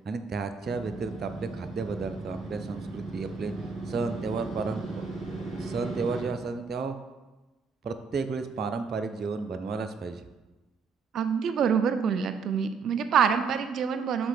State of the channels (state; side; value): quieter; left; 5.4 dB